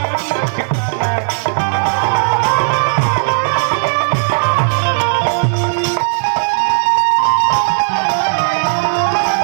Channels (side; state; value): left; silent; digital silence